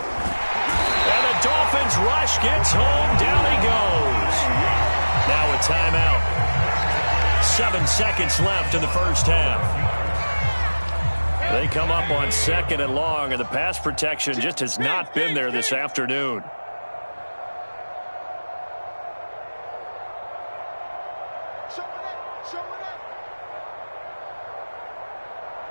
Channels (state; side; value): inverted; both; correlation -1.00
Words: And the Dolphins rush gets home. Down he goes. Now a timeout. 7 seconds left in the first half. They come up on 2nd and long, and the pass protection just has not been there this afternoon.